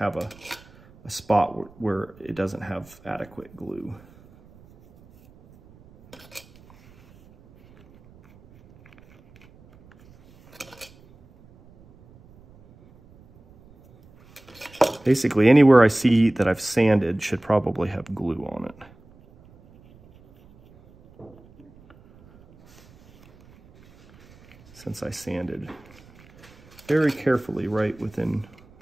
a spot where it doesn't have adequate glue. Basically, anywhere I see that I've sanded should probably have glue on it. Since I sanded very carefully right within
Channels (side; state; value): right; noise; rumble, 26 dB below the sound